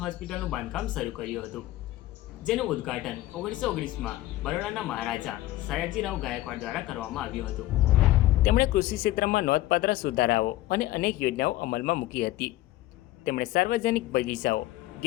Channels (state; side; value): quieter; right; 16.0 dB